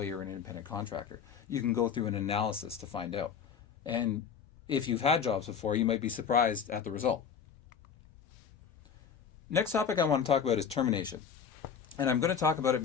or an independent contractor? You can go through an analysis to find out. And if you've had jobs before, you might be surprised at the result. Next topic I want to talk about is termination. And I'm going to talk about it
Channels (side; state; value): right; quieter; 7.1 dB